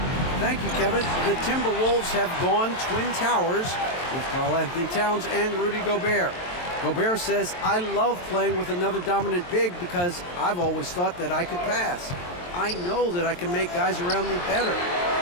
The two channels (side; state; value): right; late; 23 ms